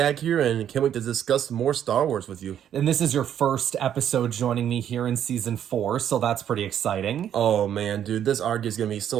here, and can't wait to discuss more Star Wars with you. And this is your first episode joining me here in Season 4, so that's pretty exciting. Oh, man, dude, this arc is going to be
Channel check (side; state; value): left; quieter; 9.8 dB